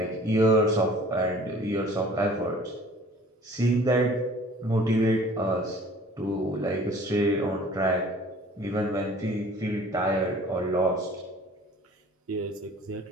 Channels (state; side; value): normal; both; correlation 0.49